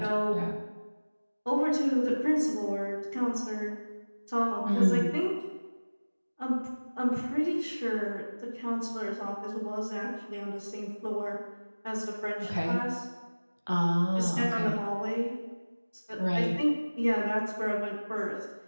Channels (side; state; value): both; inverted; correlation -1.00